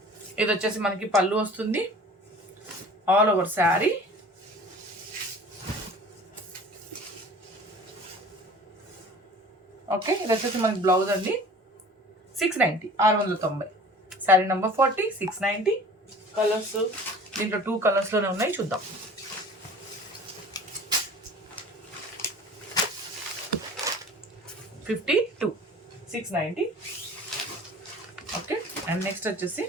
ఇది వచ్చేసి మనకి పళ్ళు వస్తుంది, ఆల్ ఓవర్ శారీ. ఓకే, ఇది వచ్చేసి మనకి బ్లౌజ్ అండి. 690, 690. శారీ నెంబర్ 40, 690. కలర్స్ దీంట్లో 2 కలర్స్లోనే ఉన్నాయి, చూద్దాం. $52, 690. ఓకే, అండ్ నెక్స్ట్ వచ్చేసి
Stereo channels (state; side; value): normal; both; correlation 0.44